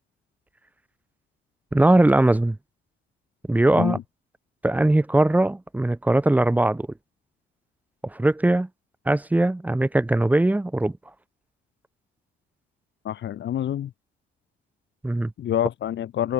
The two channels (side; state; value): both; normal; correlation 0.90